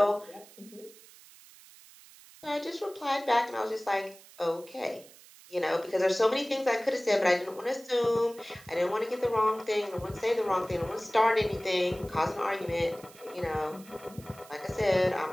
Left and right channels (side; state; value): right; noise; hiss, 22 dB below the sound